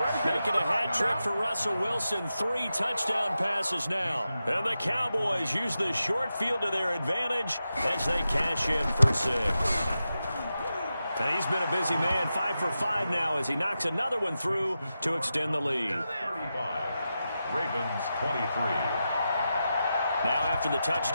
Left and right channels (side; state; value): both; inverted; correlation -0.90